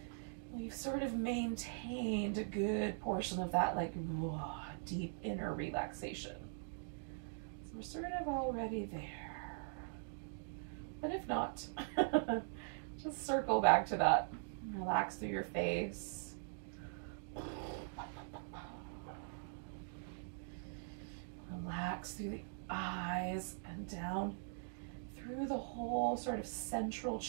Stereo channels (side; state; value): left; silent; digital silence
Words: we've sort of maintained a good portion of that like deep inner relaxation. So we're sort of already there. But if not, just circle back to that. Relax through your face. Relax through the eyes and down through the whole sort of central